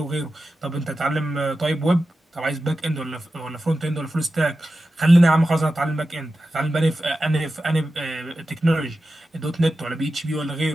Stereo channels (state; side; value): normal; both; correlation 0.92